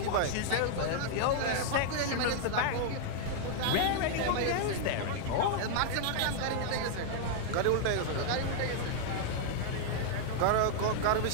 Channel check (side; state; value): both; different; correlation -0.01